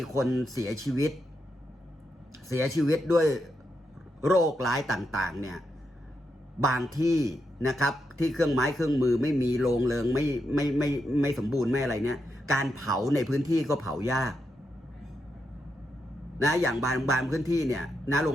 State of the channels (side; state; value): both; normal; correlation 0.83